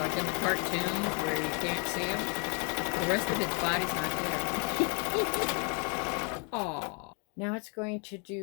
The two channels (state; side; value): quieter; right; 36.7 dB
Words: in the cartoons where you can't see him. The rest of its body's not there. Aww. Now it's going to